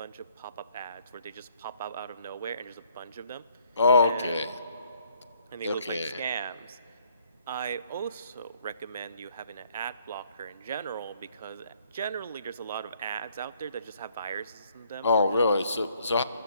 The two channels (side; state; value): both; inverted; correlation -0.65